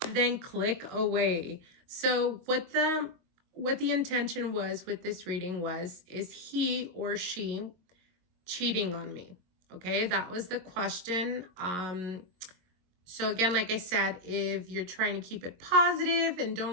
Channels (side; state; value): left; late; 22 ms